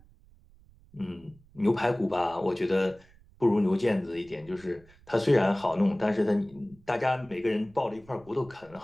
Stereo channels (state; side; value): noise; right; rumble, 27 dB below the sound